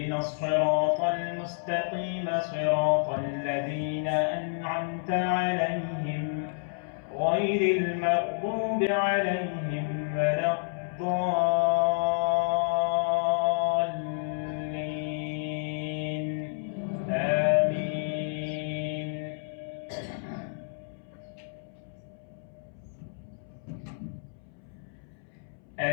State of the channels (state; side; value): silent; right; 58 dB below the other